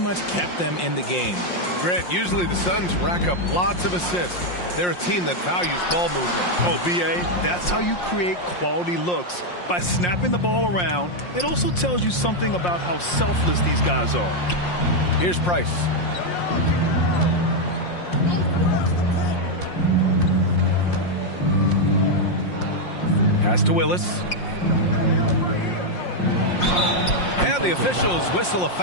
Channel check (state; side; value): late; right; 5.6 ms